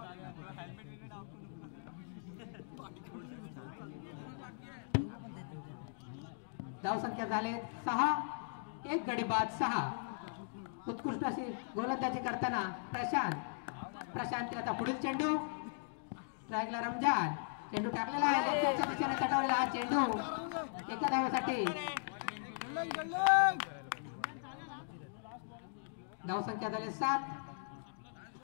धावसंख्या झाले 6 एक गडी बाद 6 उत्कृष्ट अशी गोलंदाजी करताना प्रशांत प्रशांत आता पुढील चेंडू स्ट्राईकला रमजान चेंडू टाकलेला आहे तटावलेला हा चेंडू एका धावेसाठी धावसंख्या झाली 7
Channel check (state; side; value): silent; right; digital silence